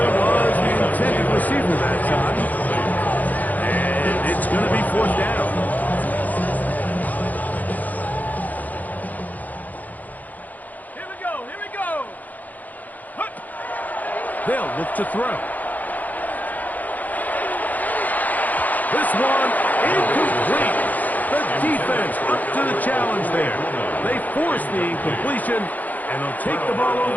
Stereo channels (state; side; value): late; right; 0.081 ms